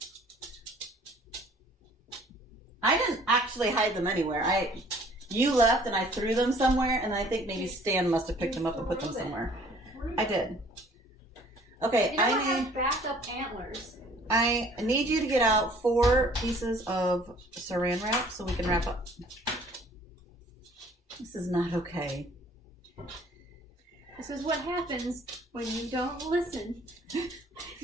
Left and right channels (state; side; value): normal; both; correlation 0.55